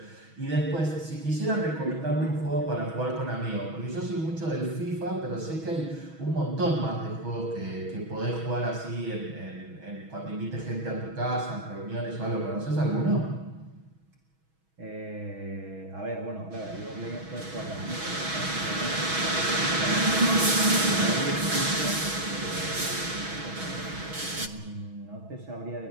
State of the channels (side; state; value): left; late; 6.2 ms